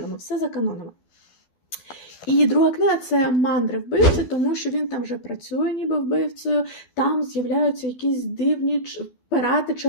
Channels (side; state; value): right; late; 12 ms